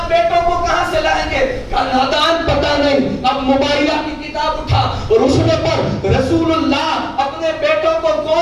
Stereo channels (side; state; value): both; identical; correlation 1.00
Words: بیٹوں کو کہاں سے لائیں گے؟ کہا نادان پتہ نہیں. اب موبائلہ کی کتاب اٹھا اور اس میں پر رسول اللہ اپنے بیٹوں کو